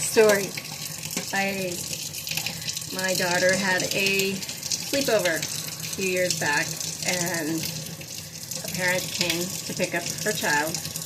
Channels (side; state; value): both; identical; correlation 1.00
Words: My daughter had a sleepover a few years back, and a parent came to pick up her child